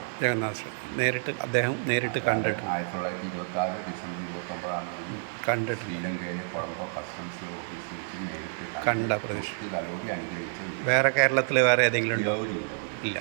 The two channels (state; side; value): silent; left; digital silence